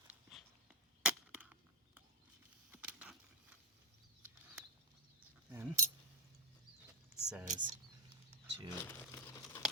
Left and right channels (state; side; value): normal; both; correlation 0.04